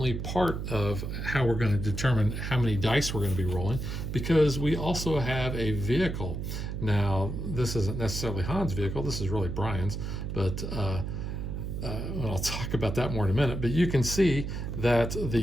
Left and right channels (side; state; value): right; noise; hum, 4 dB below the sound